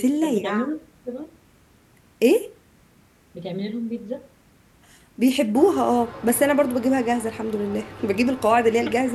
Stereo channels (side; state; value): both; identical; correlation 1.00